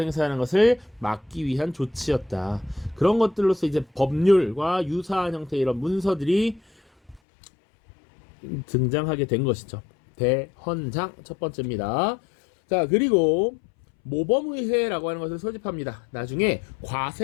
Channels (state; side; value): drops out; right; at 7.2 s